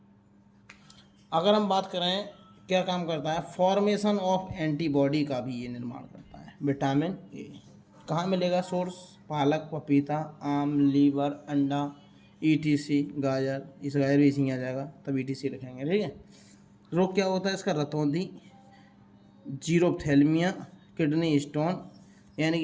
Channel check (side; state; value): both; identical; correlation 1.00